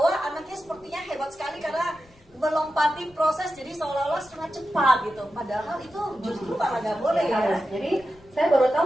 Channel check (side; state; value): left; noise; rumble, 28 dB below the sound